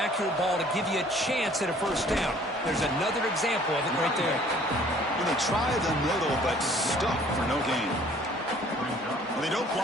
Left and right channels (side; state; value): both; normal; correlation 0.55